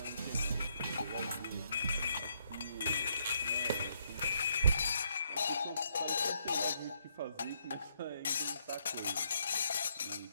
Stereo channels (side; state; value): both; inverted; correlation -0.73